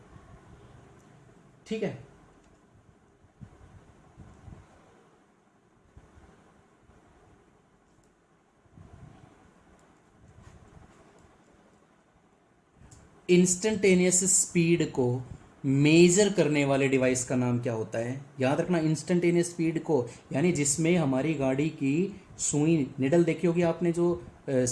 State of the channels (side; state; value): both; identical; correlation 1.00